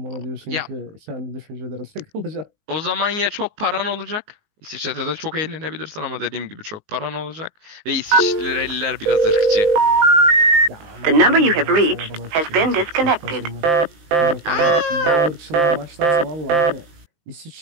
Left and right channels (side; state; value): left; late; 19 ms